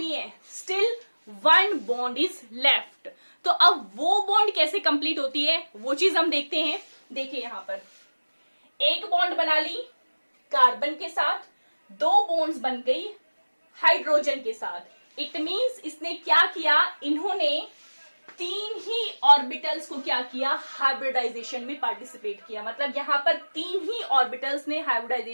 है, स्टिल 1 बॉन्ड इज लेफ्ट। तो अब वो बॉन्ड कैसे कंप्लीट होती है वो चीज हम देखते हैं। देखिए यहां पर एक बॉन्ड बना ली कार्बन के साथ, दो बॉन्ड्स बन गई हाइड्रोजन के साथ। इट मींस इसने क्या किया, इन्होंने तीन ही ऑर्बिटल्स को क्या किया, हाइब्रिडाइजेशन में पार्टिसिपेट किया। मतलब यहां पर तीन ही ऑर्बिटल्स ने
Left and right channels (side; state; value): both; inverted; correlation -1.00